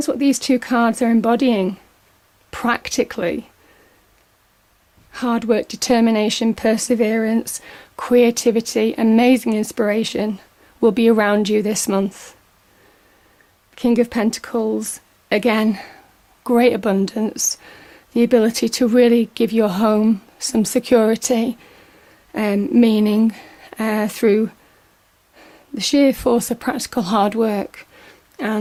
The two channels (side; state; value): both; identical; correlation 1.00